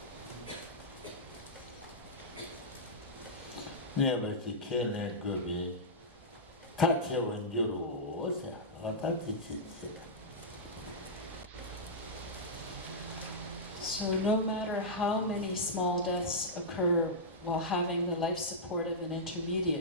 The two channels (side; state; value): both; normal; correlation -0.12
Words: Never see Kellen Kirby. Touch when you rose, or touch it. So no matter how many small deaths occur while having the life support of an